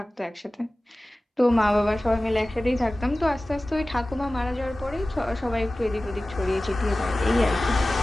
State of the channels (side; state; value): both; normal; correlation 0.97